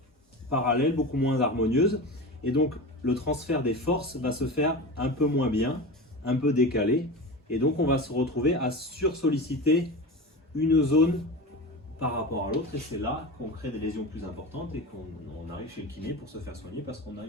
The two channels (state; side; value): normal; both; correlation 0.28